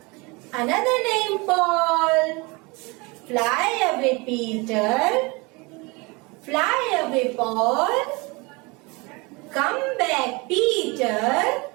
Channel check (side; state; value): left; quieter; 26.7 dB